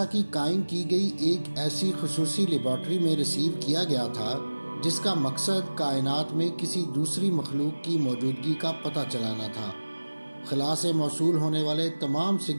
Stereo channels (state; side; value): inverted; both; correlation -1.00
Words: کی قائم کی گئی ایک ایسی خصوصی لیبارٹری میں ریسیو کیا گیا تھا جس کا مقصد کائنات میں کسی دوسری مخلوق کی موجودگی کا پتہ چلانا تھا۔ خلا سے موصول ہونے والے تمام